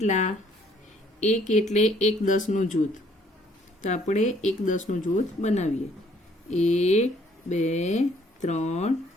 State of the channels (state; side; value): normal; both; correlation 0.63